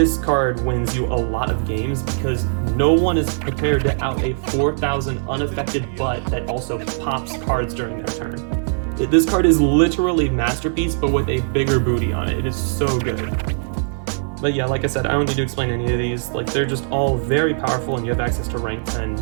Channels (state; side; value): silent; left; 63 dB below the other